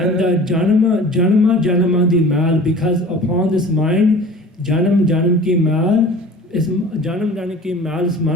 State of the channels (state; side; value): normal; both; correlation 0.42